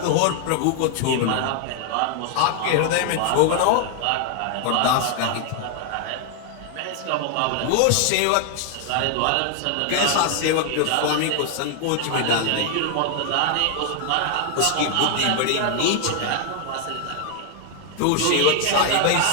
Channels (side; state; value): both; different; correlation 0.00